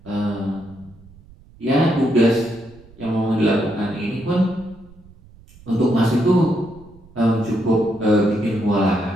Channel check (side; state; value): right; noise; rumble, 24 dB below the sound